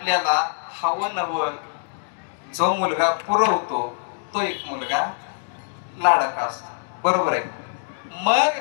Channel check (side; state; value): right; silent; digital silence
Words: हवं नवं जो मुलगा पुरवतो तो एक मुलगा लाडका असतो. बरोबर आहे.